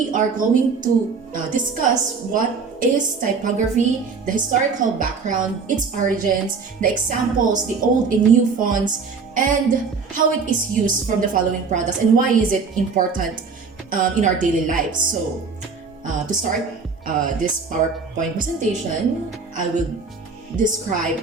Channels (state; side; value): quieter; left; 5.0 dB